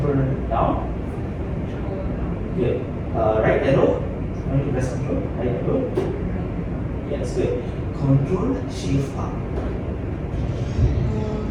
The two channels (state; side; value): identical; both; correlation 1.00